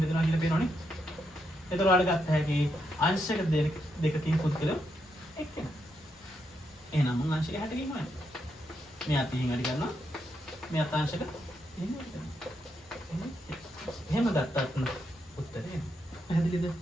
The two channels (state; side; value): normal; both; correlation 0.81